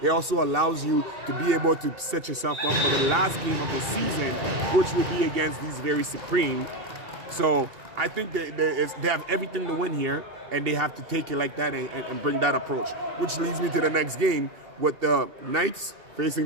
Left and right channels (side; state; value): left; late; 2.7 ms